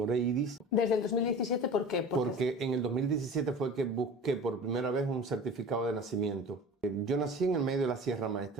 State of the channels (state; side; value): normal; both; correlation 0.38